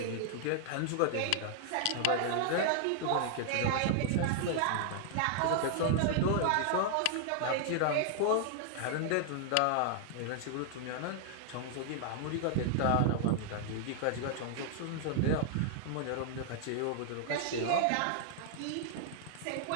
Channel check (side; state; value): both; different; correlation 0.00